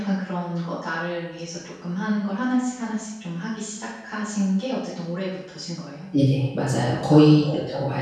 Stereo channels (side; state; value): both; identical; correlation 1.00